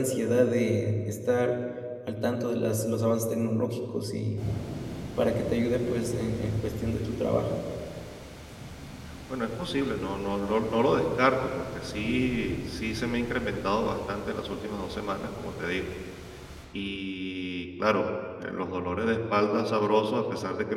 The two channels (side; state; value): both; identical; correlation 1.00